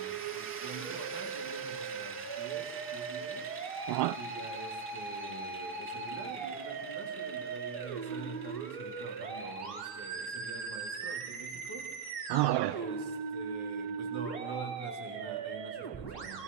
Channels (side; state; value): left; quieter; 6.5 dB